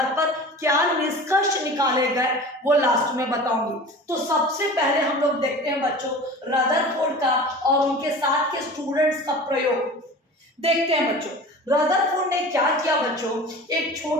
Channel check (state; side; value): normal; both; correlation 0.37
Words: पर क्या निष्कर्ष निकाले गए वो लास्ट में बताऊंगी। तो सबसे पहले हम लोग देखते हैं बच्चों रदरफोर्ड का और उनके साथ के स्टूडेंट्स का प्रयोग देखते हैं। बच्चों रदरफोर्ड ने क्या किया बच्चों, एक